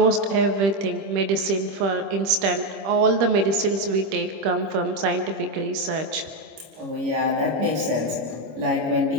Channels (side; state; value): left; late; 26 ms